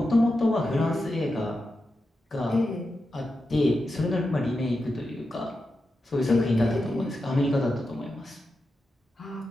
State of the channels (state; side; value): normal; both; correlation 0.89